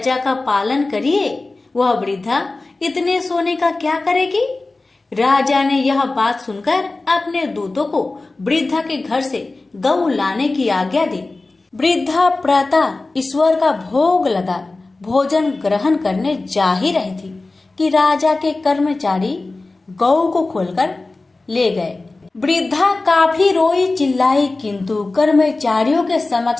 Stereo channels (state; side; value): quieter; right; 3.3 dB